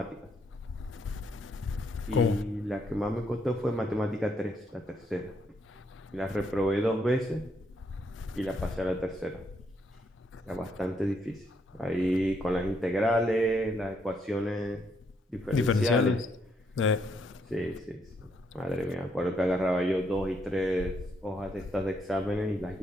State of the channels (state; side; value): normal; both; correlation 0.75